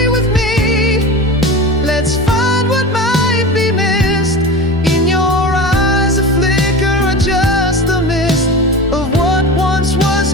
with me. Let's find what might be missed in your eyes, a flicker or just a mist of what once was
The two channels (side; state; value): both; normal; correlation 0.30